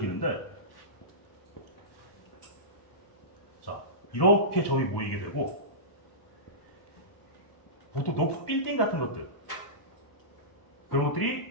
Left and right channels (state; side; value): late; right; 1.1 ms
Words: 자, 이렇게 점이 모이게 되고, 보통 높은 빌딩 같은 것들, 그런